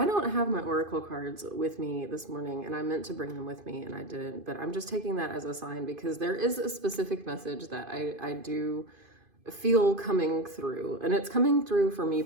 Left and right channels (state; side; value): late; left; 2.5 ms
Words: don't have my oracle cards with me this morning, and I meant to bring them with me and I didn't, but I'm just taking that as a sign because there is a specific message that I do feel coming through, and it's coming through for me